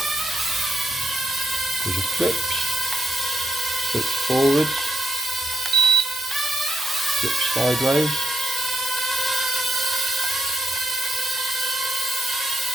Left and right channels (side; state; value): both; normal; correlation 0.79